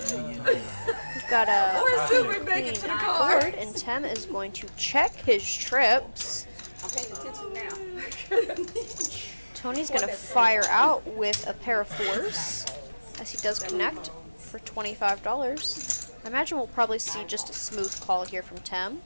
got a Or soon we make it to the car. board, and Tim is going to check his trips. I'm paying attention now. Tony's going to fire out with a pair of 4s, as he does connect for $25. I imagine we'll probably see just a smooth call here from Tim.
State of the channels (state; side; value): inverted; both; correlation -1.00